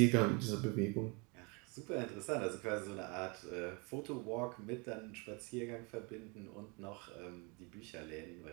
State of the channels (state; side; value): quieter; left; 30.6 dB